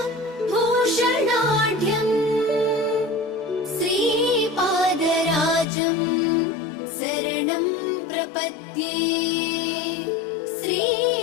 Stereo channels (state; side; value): drops out; right; at 5.7 s